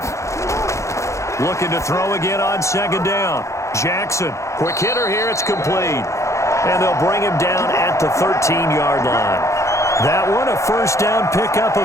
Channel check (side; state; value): right; late; 0.14 ms